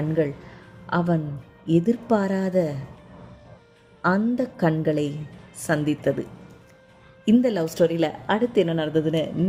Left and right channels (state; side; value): identical; both; correlation 1.00